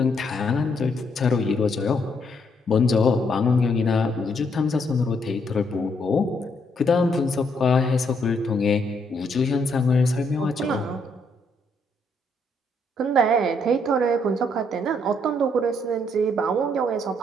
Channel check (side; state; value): both; normal; correlation 0.73